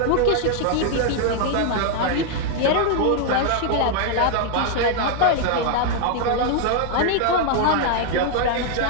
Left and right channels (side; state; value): both; different; correlation 0.00